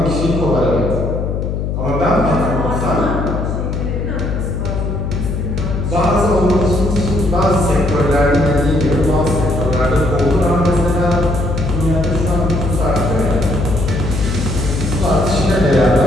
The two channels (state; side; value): noise; left; hum, 2 dB below the sound